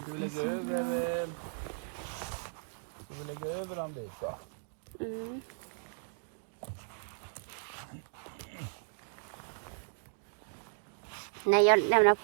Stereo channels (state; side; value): silent; left; digital silence